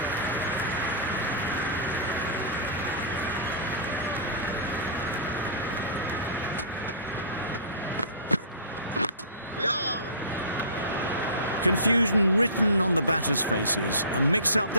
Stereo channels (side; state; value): both; inverted; correlation -0.37